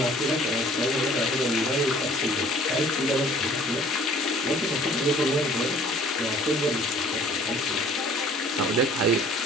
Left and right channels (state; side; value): normal; both; correlation 0.53